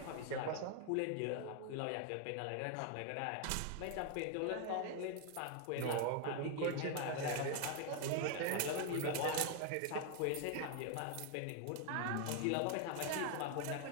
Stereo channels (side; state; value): both; different; correlation 0.00